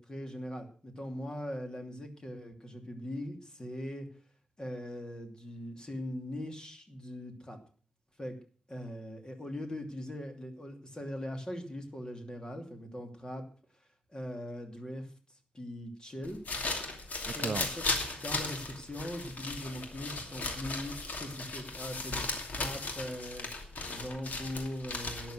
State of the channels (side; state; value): both; normal; correlation 0.51